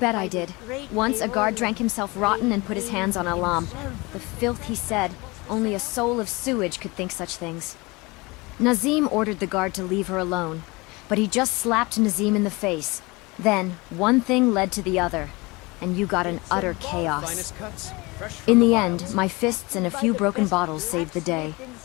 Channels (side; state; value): right; quieter; 24.5 dB